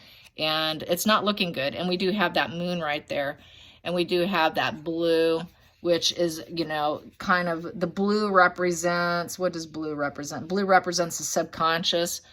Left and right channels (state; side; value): identical; both; correlation 1.00